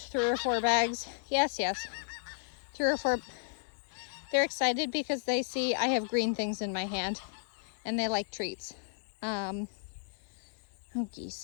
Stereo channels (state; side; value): silent; right; digital silence